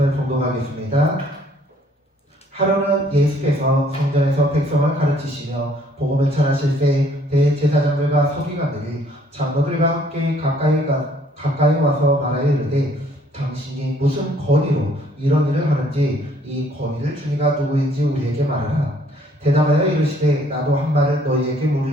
봉독하겠습니다. 하루는 예수께서 성전에서 백성을 가르치시며 복음을 전하실 때 대제사장들과 서기관들이 장로들과 함께 가까이 와서 말하여 이르되 당신이 무슨 권위로 이런 일을 하는지 이 권위를 주니가 누구인지 우리에게 말하라. 대답하여 이르시되 나도 한 말을 너희에게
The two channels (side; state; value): both; normal; correlation 0.62